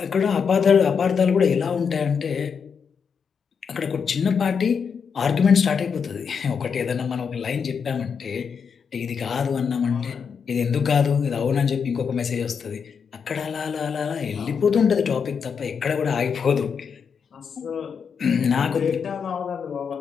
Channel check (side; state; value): right; quieter; 6.3 dB